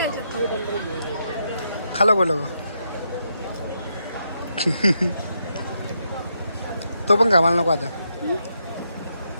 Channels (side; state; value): both; inverted; correlation -0.81